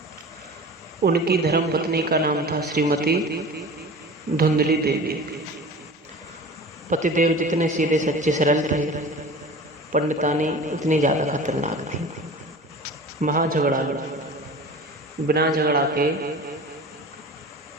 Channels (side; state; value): both; normal; correlation 0.37